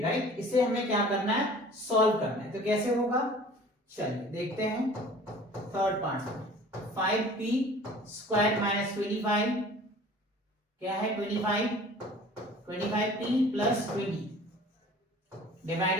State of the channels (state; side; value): normal; both; correlation 0.47